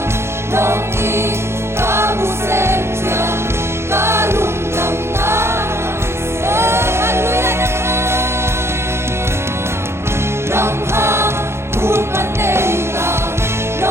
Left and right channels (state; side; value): late; left; 0.12 ms